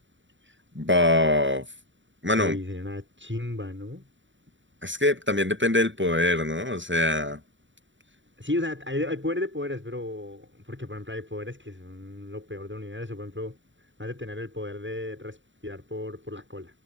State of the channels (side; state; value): left; late; 0.55 ms